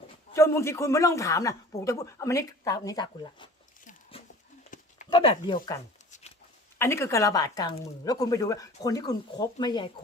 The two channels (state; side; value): normal; both; correlation 0.44